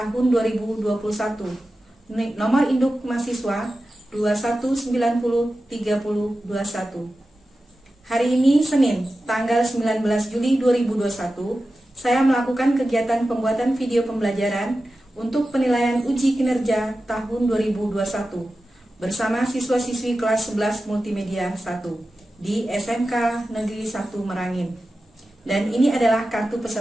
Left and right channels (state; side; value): normal; both; correlation 0.93